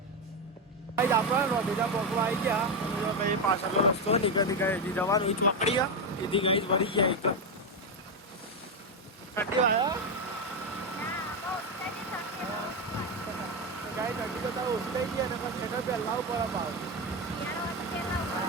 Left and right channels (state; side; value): normal; both; correlation 0.09